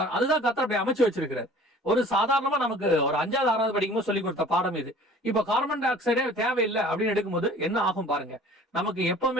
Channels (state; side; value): normal; both; correlation 0.48